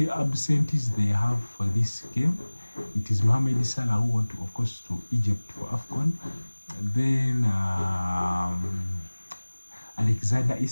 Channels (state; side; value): inverted; both; correlation -1.00